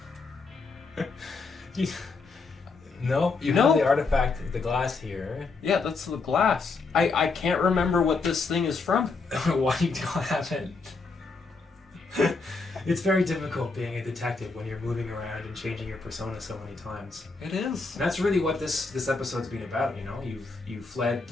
No, you have the artifact, the glass here. Yeah, that's the glass. I can't remember what this thing is from. Why you don't have it? It's very difficult being a detective when you're moving around and changing your persona so many times. It is. And that's really what this episode's been about. You've fled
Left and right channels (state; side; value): quieter; right; 4.2 dB